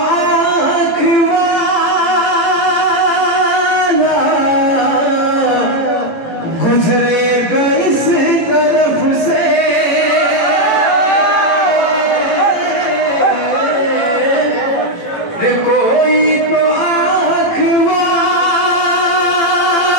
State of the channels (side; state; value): right; late; 18 ms